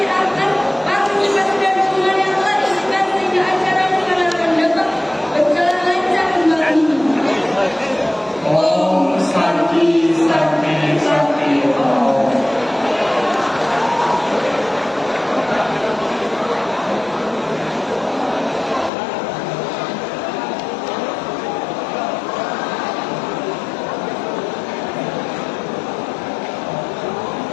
atas partisipasi dan dukungan yang telah diberikan sehingga acara diharapkan dapat berjalan lancar kembali. Om Santi Santi Santi Om.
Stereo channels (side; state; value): right; drops out; at 18.9 s